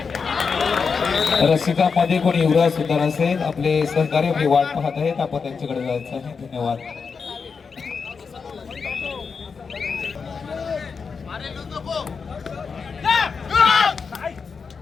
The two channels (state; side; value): quieter; right; 5.4 dB